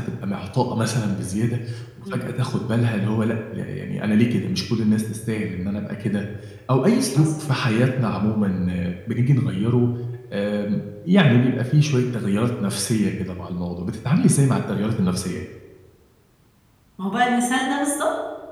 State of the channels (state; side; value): identical; both; correlation 1.00